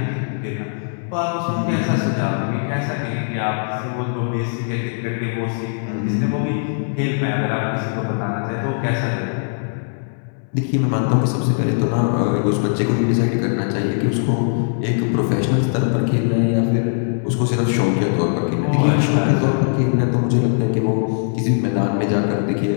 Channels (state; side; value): silent; right; 64 dB below the other